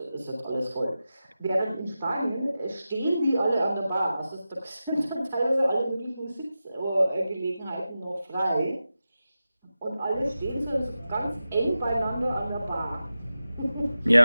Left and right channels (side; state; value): both; inverted; correlation -0.93